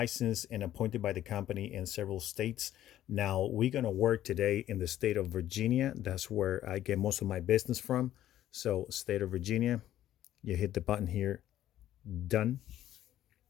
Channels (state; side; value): quieter; right; 12.7 dB